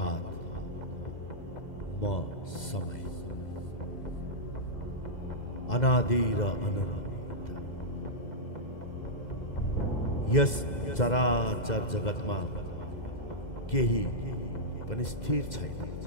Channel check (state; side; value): late; right; 2.0 ms